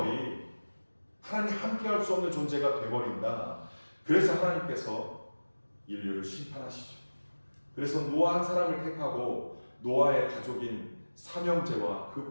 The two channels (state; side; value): inverted; both; correlation -1.00